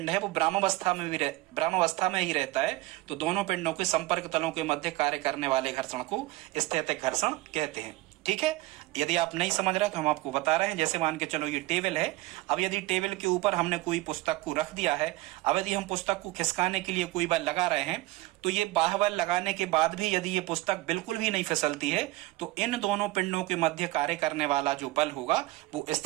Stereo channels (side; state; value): left; quieter; 19.5 dB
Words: है वो ब्राह्मावस्था में ही रहता है, तो दोनों पिंडों के संपर्क तलों के मध्य कार्य करने वाले घर्षण को स्थैतिक घर्षण कहते हैं। ठीक है, यदि आप नहीं समझ रहे तो हम आपको बता रहे हैं। जैसे मान के चलो ये टेबल है, अब यदि टेबल के ऊपर हमने कोई पुस्तक को रख दिया है, अब यदि हम पुस्तक को खिसकाने के लिए कोई बल लगा रहे हैं, तो ये बाह्य बल लगाने के बाद भी यदि ये पुस्तक बिल्कुल भी नहीं फिसलती है, तो इन दोनों पिंडों के मध्य कार्य करने वाला जो बल होगा वो